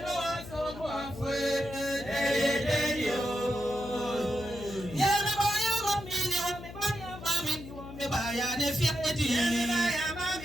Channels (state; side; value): noise; left; hum, 13 dB below the sound